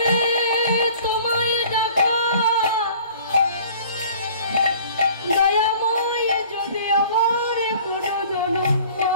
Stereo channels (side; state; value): both; inverted; correlation -0.50